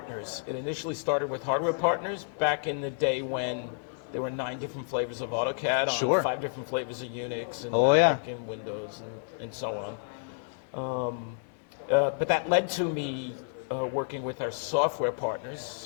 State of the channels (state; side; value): silent; right; 57 dB below the other